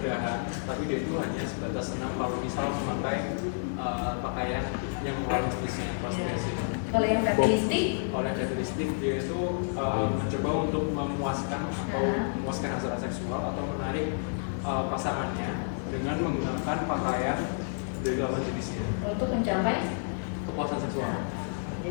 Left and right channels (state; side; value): silent; right; digital silence